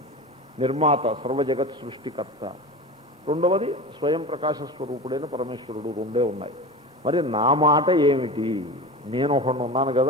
నిర్మాత, సర్వజగత్ సృష్టికర్త. రెండవది స్వయం ప్రకాశ స్వరూపుడైన పరమేశ్వరుడు. రెండే ఉన్నాయి. మరి నా మాట ఏమిటి? నేను ఒకడు ఉన్నాను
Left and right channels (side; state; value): both; normal; correlation 0.29